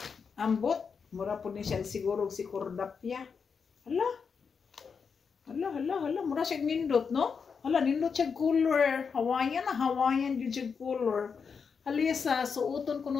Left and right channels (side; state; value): right; quieter; 5.9 dB